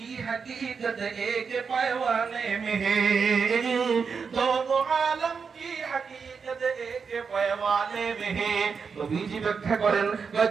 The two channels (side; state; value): left; quieter; 5.7 dB